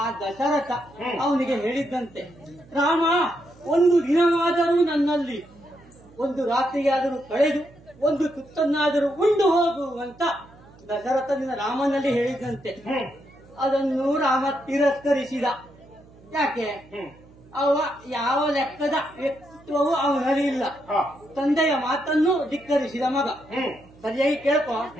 ದಶರಥ ಅವನಿಗೆ ಹೇಳಿದ್ದಂತೆ, ರಾಮ ಒಂದು ದಿನವಾದರೂ ನನ್ನಲ್ಲಿ ಒಂದು ರಾತ್ರಿಯಾದರೂ ಕಳೆದು ಒಂದು ತುತ್ತನ್ನಾದರೂ ಉಂಡು ಹೋಗುವಂತ ದಶರಥನಿಂದ ರಾಮನಲ್ಲಿ ಹೇಳಿದಂತೆ. ಅದನ್ನು ರಾಮ ತಿರಸ್ಕರಿಸಿದ. ಯಾಕೆ? ಅವ ಯಾವ ಲೆಕ್ಕದ ವ್ಯಕ್ತಿತ್ವವು ಅವನಲ್ಲಿ ಇಲ್ಲ. ತಂದೆಯ ಮಾತನ್ನು ಧಿಕ್ಕರಿಸಿದ ಮಗ. ಸರಿಯಾಗಿ ಕೇಳ್ಕೊ.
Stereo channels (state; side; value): noise; right; hum, 25 dB below the sound